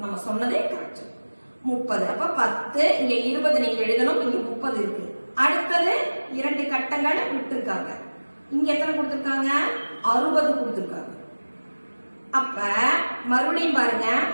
நம்ம சொன்னதே கரெக்ட். 30. அப்ப 10, இங்க 20 நீங்க எழுதணும். இங்க 30 இருக்கு. அடுத்தது 2 கட்டங்கள் விட்டுருக்காங்க. இங்க எத்தனை கொடுத்திருக்காங்க? 60 கொடுத்திருக்காங்க. அப்ப மறுபடியும் பாருங்க,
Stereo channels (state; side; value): inverted; both; correlation -1.00